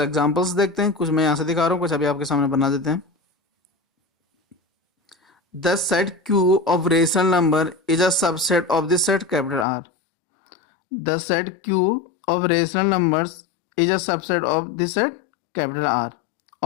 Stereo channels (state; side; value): drops out; right; at 9.7 s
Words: देखते हैं, कुछ मैं यहाँ से दिखा रहा हूँ, कुछ अभी आपके सामने बना देते हैं। The set Q of rational number is a subset of the set capital R. The set Q of rational numbers is a subset of the set capital R